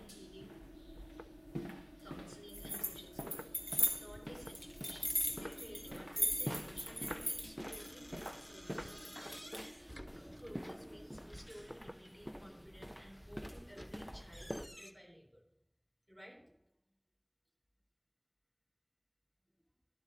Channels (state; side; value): identical; both; correlation 1.00